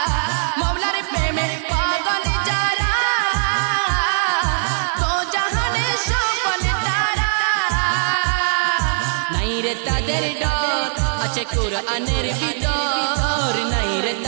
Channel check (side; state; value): left; silent; 57 dB below the other